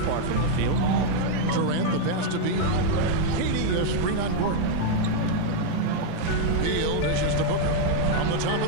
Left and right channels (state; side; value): different; both; correlation 0.00